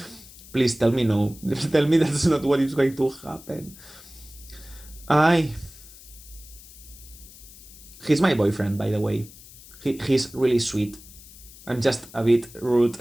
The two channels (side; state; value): left; noise; hiss, 20 dB below the sound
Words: Please tell me no. Tell me that's not what is going to happen. He's my boyfriend, by the way. He's really sweet. I'm just a bit rude